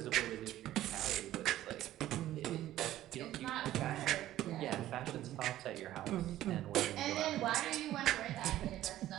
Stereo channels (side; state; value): left; quieter; 13.8 dB